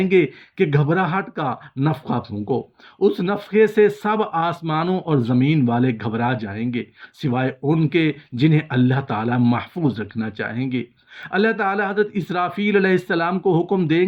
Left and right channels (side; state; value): both; identical; correlation 1.00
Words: گے کہ گھبراہٹ کا نفخہ پھونکو۔ اس نفخے سے سب آسمانوں اور زمین والے گھبرا جائیں گے، سوائے ان کے جنہیں اللہ تعالیٰ محفوظ رکھنا چاہیں گے۔ اللہ تعالیٰ حضرت اسرافیل علیہ السلام کو حکم دیں